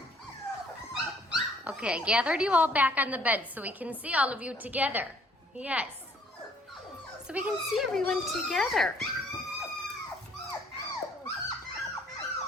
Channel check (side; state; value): both; normal; correlation 0.60